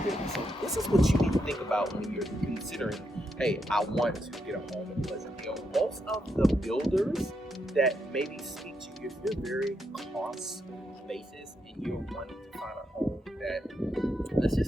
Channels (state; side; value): normal; both; correlation 0.81